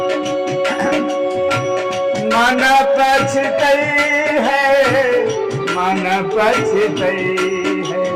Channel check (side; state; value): both; identical; correlation 1.00